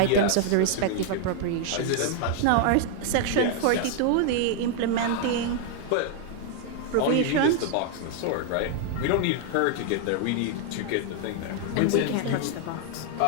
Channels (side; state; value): both; different; correlation 0.00